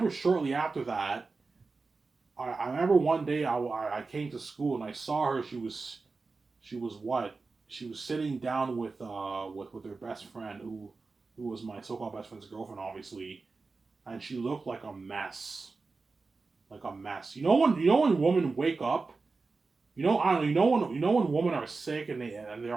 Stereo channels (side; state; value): left; quieter; 4.0 dB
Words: shortly after that. I remember one day I came to school and I saw her. She was what? She was sitting down with her best friend who was my so-called best friend's girlfriend, obviously, and she looked like a mess, like a mess. You know when women wake up. I don't know. You know when women are sick and they're